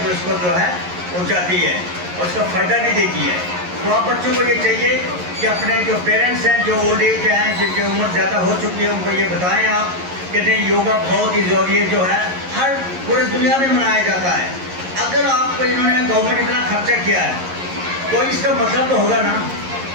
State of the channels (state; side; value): late; left; 11 ms